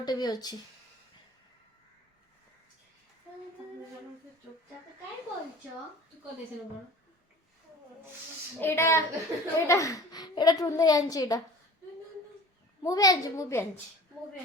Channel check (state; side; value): normal; both; correlation 0.43